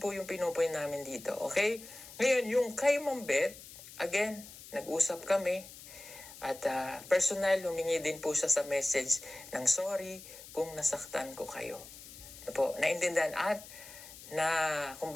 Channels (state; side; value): noise; left; hiss, 16 dB below the sound